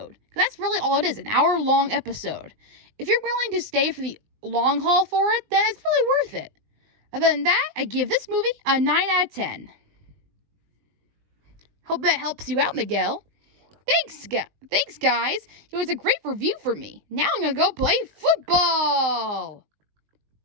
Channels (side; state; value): left; late; 20 ms